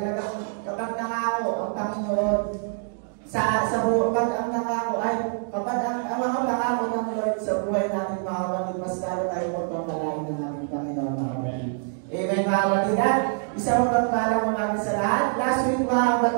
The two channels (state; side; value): silent; left; 62 dB below the other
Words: kapag nangako ang Panginoon sa buhay, kapag ang nangako ay kapag ang mga nangako ng Lord sa buhay natin, mga kapatid, mas lalo tayo magpapalain ng ating Panginoon, mga kapatid. Amen, mga kapatid. At isang magpapalang umaga sa lahat. Last week, mga